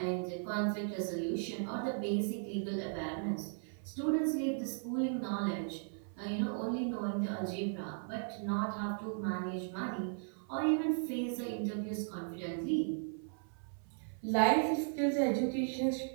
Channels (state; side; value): silent; left; 53 dB below the other